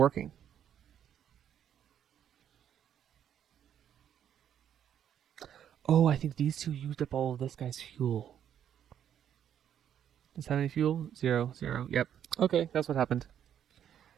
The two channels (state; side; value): quieter; left; 9.6 dB